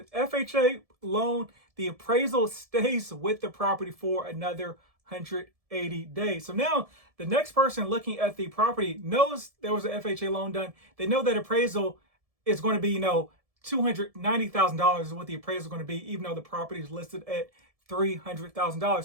FHA loan, the appraisal stays with the property for another 180 days. So now the next person looking at the property knows there was an FHA loan done. They know that appraisal is going to be, $290,000 is what the appraisal is going to be, even though the property is listed at $300,000.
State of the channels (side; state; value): left; late; 1.7 ms